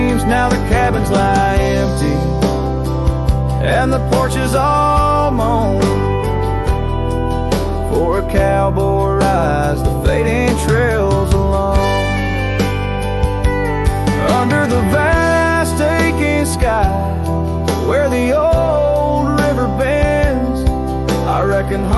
Now the cabins lie empty and the porch is all mown, for a cowboy rides the fading trails alone. Under the vast aching sky where the old river bends, I reckon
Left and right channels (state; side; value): identical; both; correlation 1.00